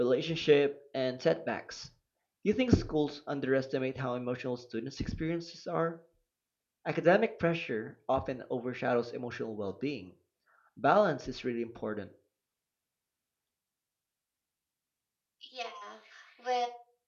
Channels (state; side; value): identical; both; correlation 1.00